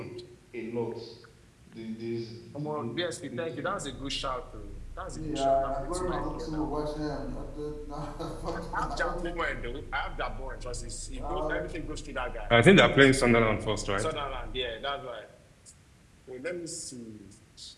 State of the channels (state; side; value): identical; both; correlation 1.00